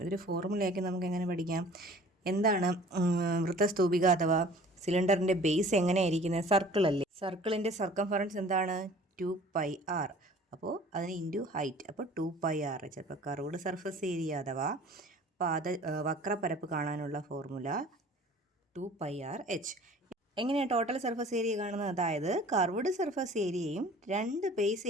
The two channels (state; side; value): normal; both; correlation 0.48